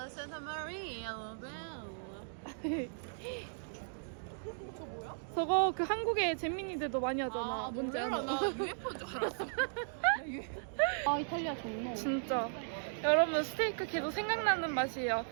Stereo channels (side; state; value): left; silent; digital silence